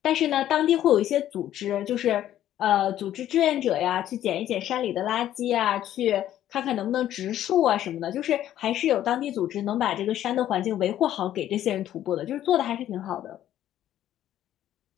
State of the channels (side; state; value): right; quieter; 12.1 dB